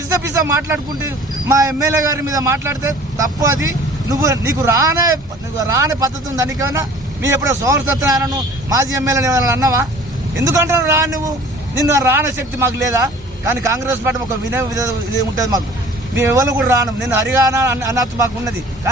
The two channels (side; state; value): both; normal; correlation 0.48